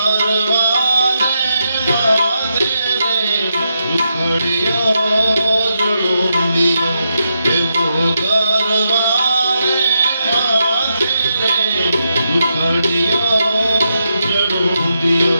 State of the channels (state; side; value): inverted; both; correlation -0.83